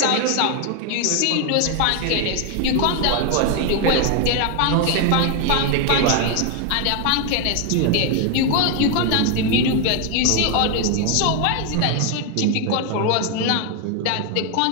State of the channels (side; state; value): both; different; correlation 0.01